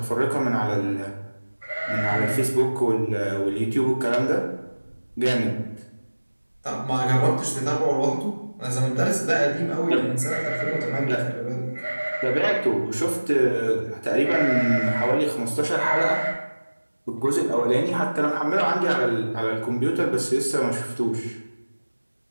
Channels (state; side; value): inverted; both; correlation -1.00